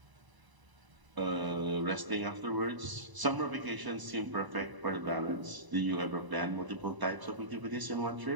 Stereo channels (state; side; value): late; left; 1.0 ms